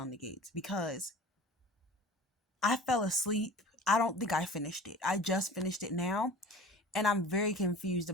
the Gates because I fell asleep. I don't think I finished it. I just finished it now. And I'm very confused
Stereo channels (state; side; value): normal; both; correlation 0.40